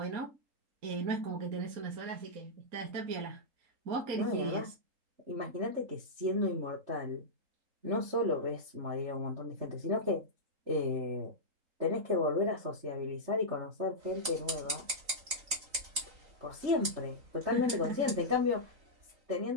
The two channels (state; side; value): late; left; 3.8 ms